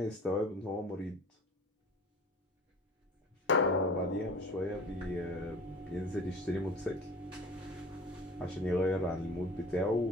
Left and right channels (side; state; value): both; normal; correlation 0.41